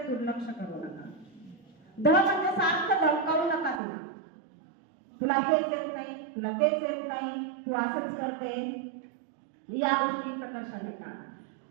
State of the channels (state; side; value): drops out; left; at 3.8 s